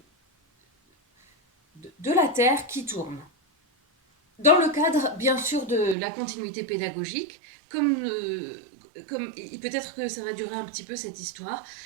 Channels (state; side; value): drops out; left; at 6.0 s